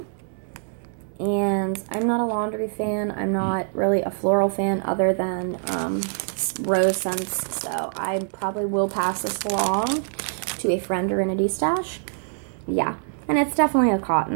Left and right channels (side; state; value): left; silent; 62 dB below the other